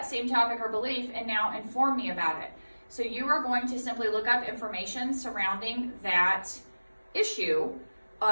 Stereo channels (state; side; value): inverted; both; correlation -1.00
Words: same topic or belief and now inform me about it. So you are going to simply look up information surrounding that issue